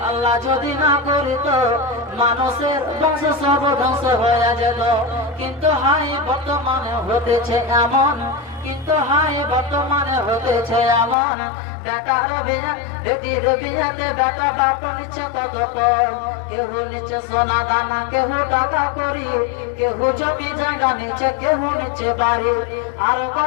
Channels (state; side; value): drops out; right; at 11.2 s